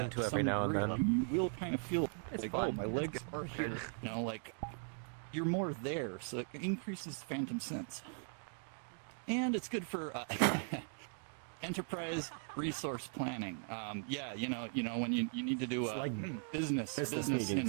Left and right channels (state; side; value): silent; left; 52 dB below the other